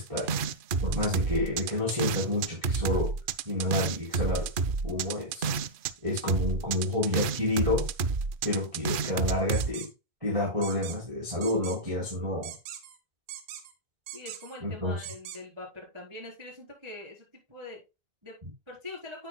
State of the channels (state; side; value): late; left; 2.4 ms